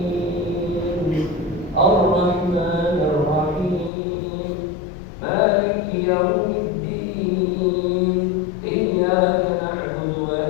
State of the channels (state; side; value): drops out; right; at 3.9 s